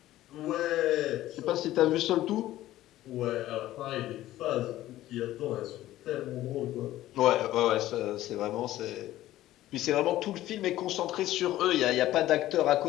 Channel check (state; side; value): quieter; right; 14.7 dB